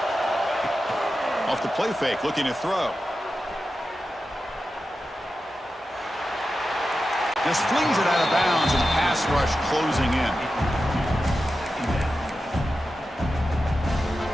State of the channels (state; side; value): normal; both; correlation 0.92